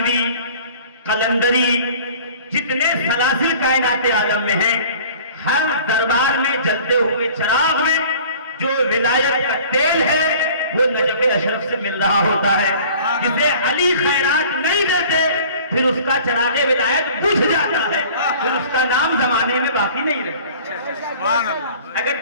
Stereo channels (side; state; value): both; inverted; correlation -0.47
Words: قلندری، جتنے سلاسل کائنات عالم میں ہیں، ہر دربار میں جلتے ہوئے چراغ میں جو ولایت کا تیل ہے وہ نجف اشرف سے مل رہا ہوتا ہے. جسے علی خیرات نہیں دیتے پھر اس کا چراغ ولایت بجھ جاتا ہے، پھر اس کا نام زمانے میں باقی نہیں رہتا. اگر